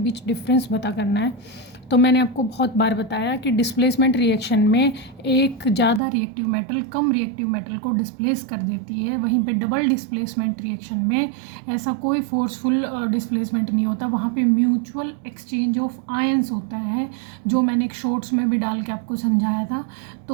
डिफरेंस पता करना है। तो मैंने आपको बहुत बार बताया कि डिस्प्लेसमेंट रिएक्शन में एक ज़्यादा रिएक्टिव मेटल कम रिएक्टिव मेटल को डिस्प्लेस कर देती है, वहीं पे डबल डिस्प्लेसमेंट रिएक्शन में ऐसा कोई फोर्सफुल डिस्प्लेसमेंट नहीं होता, वहाँ पे म्यूचुअल एक्सचेंज ऑफ आयंस होता है, जो मैंने एक शॉर्ट्स में भी डाल के आपको समझाया था।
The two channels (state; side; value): drops out; left; at 6.0 s